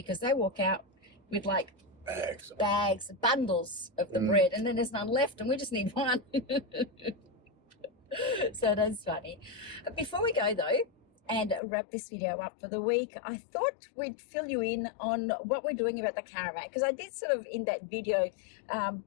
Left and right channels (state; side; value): drops out; right; at 11.6 s